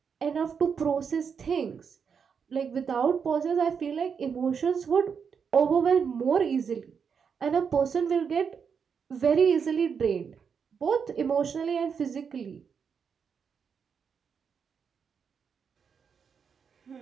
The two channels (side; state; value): left; quieter; 6.5 dB